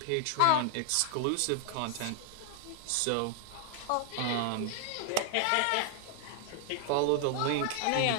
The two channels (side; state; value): both; different; correlation 0.00